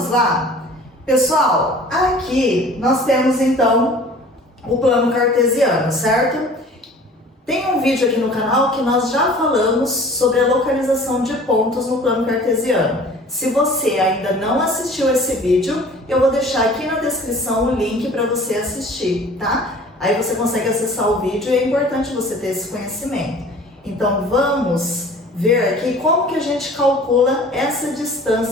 lá? Pessoal, aqui nós temos então o plano cartesiano, certo? Tem um vídeo aqui no canal que nós já falamos sobre a localização de pontos no plano cartesiano. Se você ainda não assistiu esse vídeo, eu vou deixar aqui na descrição o link para você assistir, tá? Aí você consegue acessar o vídeo e é importante você ter esse conhecimento. Então vamos ver aqui como que a gente calcula essa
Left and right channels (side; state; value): both; normal; correlation 0.47